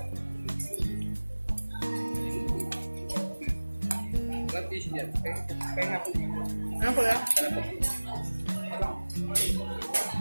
fish dyan. Kaya nga po. Ano po lang? Ano po?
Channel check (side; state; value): both; inverted; correlation -1.00